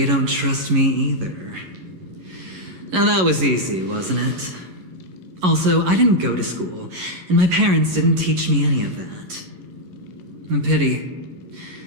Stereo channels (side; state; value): left; late; 11 ms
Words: don't trust me either. Now that was easy, wasn't it? Also, I didn't go to school, and my parents didn't teach me any of that. A pity.